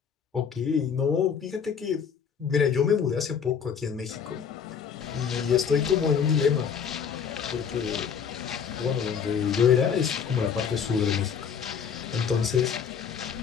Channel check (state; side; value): quieter; right; 7.0 dB